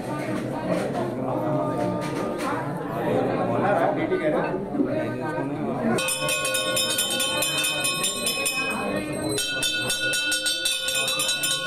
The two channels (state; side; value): identical; both; correlation 1.00